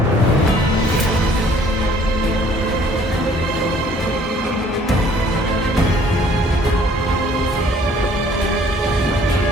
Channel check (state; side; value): normal; both; correlation 0.58